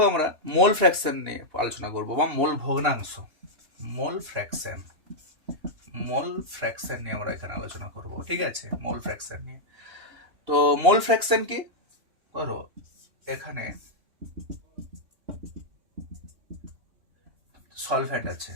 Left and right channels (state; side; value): late; left; 2.8 ms